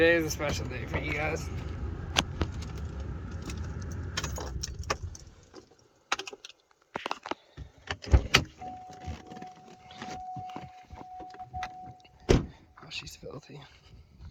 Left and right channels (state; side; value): identical; both; correlation 1.00